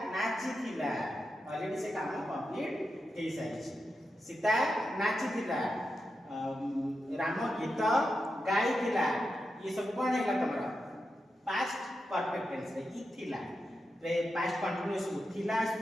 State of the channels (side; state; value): both; normal; correlation 0.88